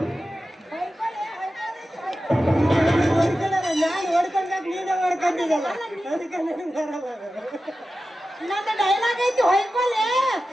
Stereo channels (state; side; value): normal; both; correlation 0.93